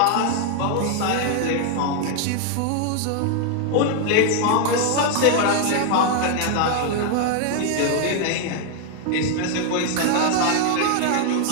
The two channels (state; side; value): different; both; correlation 0.00